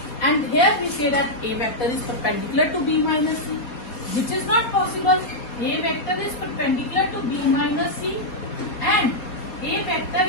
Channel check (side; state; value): right; late; 4.4 ms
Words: and here we say that A vector is perpendicular to B minus C, which is not possible. A vector is perpendicular to B minus C and A vector